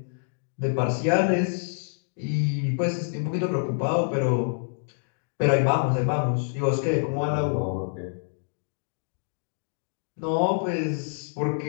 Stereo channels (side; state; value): right; silent; digital silence